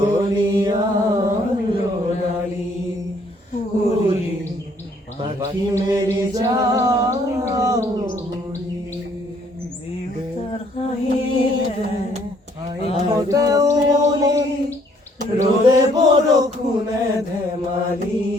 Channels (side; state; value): both; normal; correlation 0.64